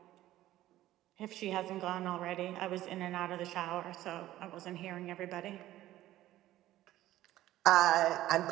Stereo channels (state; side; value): quieter; left; 14.6 dB